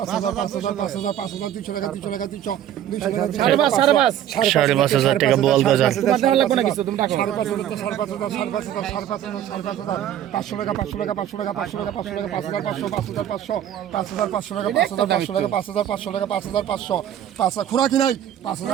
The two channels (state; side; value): quieter; left; 11.0 dB